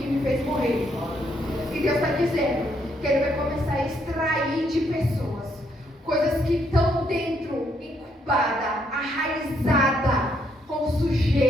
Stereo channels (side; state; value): both; normal; correlation 0.73